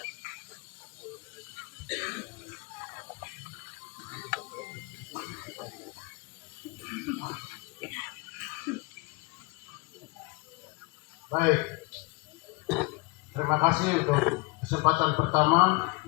Baik, terima kasih untuk kesempatan pertama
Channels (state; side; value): quieter; right; 26.7 dB